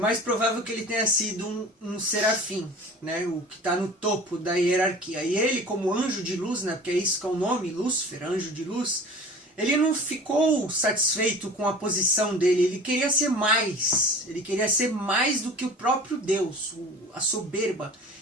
provável que ele tenha sido um serafim, né? O que está no topo da hierarquia. E ele, como anjo de luz, né? Porque é isso que é o nome, Lúcifer, anjo de luz, ele não ficou satisfeito com a posição dele, ele queria ser mais. Ele queria ser mais do que o próprio Deus, a soberba.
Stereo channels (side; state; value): both; normal; correlation 0.41